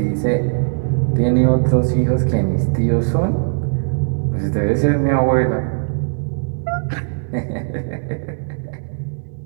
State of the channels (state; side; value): silent; left; digital silence